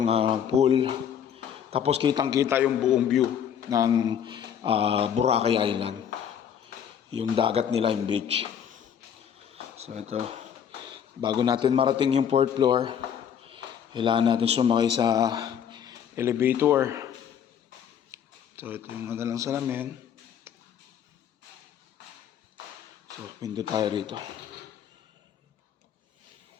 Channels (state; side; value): quieter; right; 8.6 dB